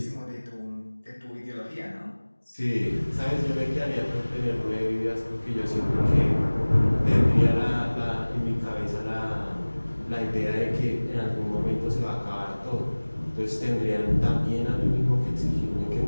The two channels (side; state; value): both; inverted; correlation -1.00